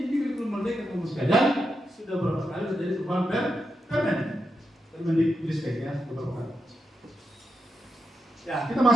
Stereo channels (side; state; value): both; normal; correlation 0.86